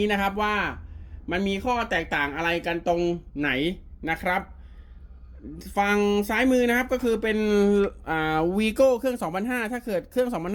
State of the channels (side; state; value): both; identical; correlation 1.00